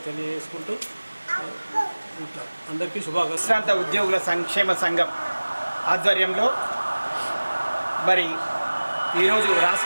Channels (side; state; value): both; inverted; correlation -1.00